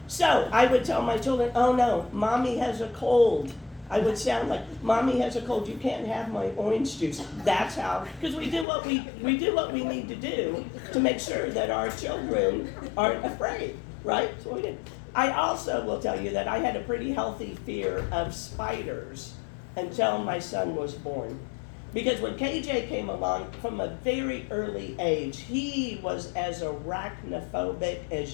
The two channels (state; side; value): drops out; right; at 8.7 s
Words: So I would tell my children, oh no, mommy has a cold. I would sound like, mommy has a cold, you can't have my orange juice. That's how, because we do what we need to do to make sure that our children aren't afraid, right? So we did. I also will tell you that I had a pretty healthy fear of spiders until my son was born. Because when KJ came along, from a very early age, he was as arachnophobic